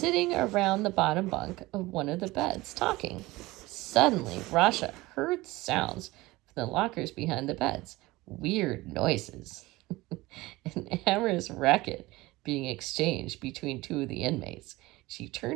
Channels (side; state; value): left; quieter; 20.0 dB